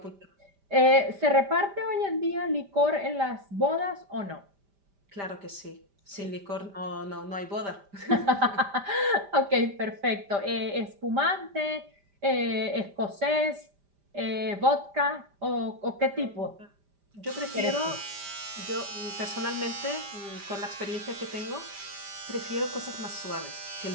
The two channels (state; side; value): late; left; 5.1 ms